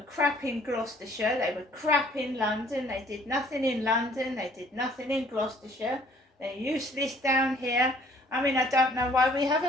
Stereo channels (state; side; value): normal; both; correlation 0.58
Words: crap in Gloucestershire, they were crap in London, they did nothing in London, they did nothing in Gloucestershire, they're useless down here. I mean, I don't know why we have